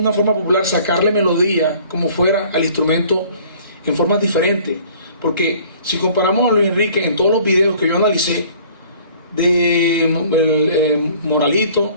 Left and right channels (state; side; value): inverted; both; correlation -0.53